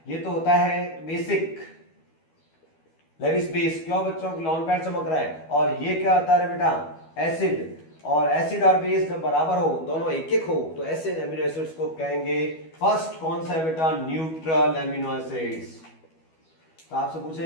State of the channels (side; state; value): right; late; 12 ms